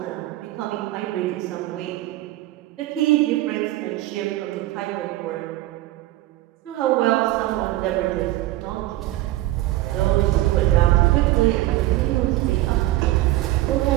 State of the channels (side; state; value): left; quieter; 16.4 dB